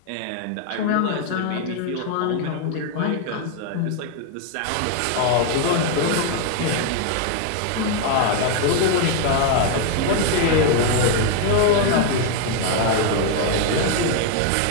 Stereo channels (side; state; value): both; different; correlation 0.01